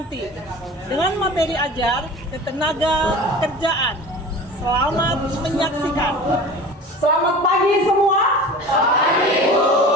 dengan materi ajar ketenaga kerjaan. Selamat menyaksikan. Selamat pagi semua. Selamat pagi, Bu.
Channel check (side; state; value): both; normal; correlation 0.37